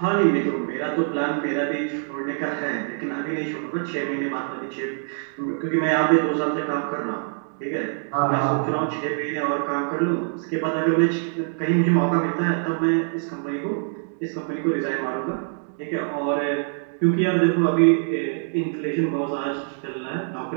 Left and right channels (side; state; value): left; silent; digital silence